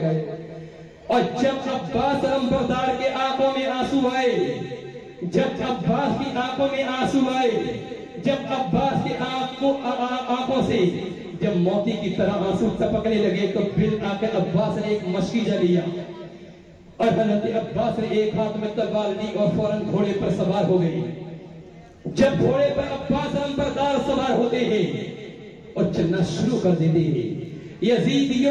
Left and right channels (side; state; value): both; identical; correlation 1.00